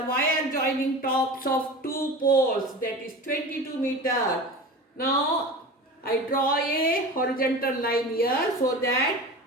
wire joining tops of two poles, that is 22 meter. Now I draw a horizontal line here so that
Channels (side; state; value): both; normal; correlation 0.33